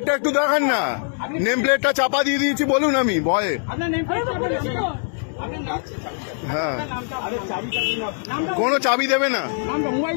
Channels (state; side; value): silent; right; digital silence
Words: একটু দেখান না, নেম প্লেটটা চাপা দিয়ে দিয়েছি বলুন আমি ভয়ে। হ্যাঁ, কোনো চাবি দেবে না।